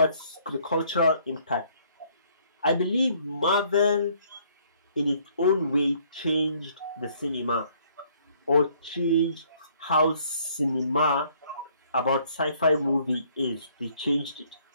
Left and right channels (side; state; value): both; inverted; correlation -0.63